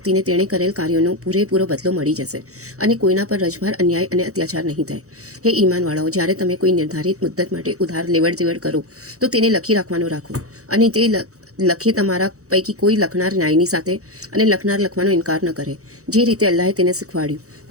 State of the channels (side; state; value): left; late; 0.65 ms